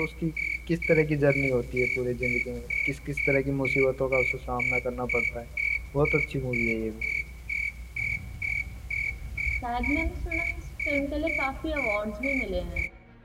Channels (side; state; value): both; identical; correlation 1.00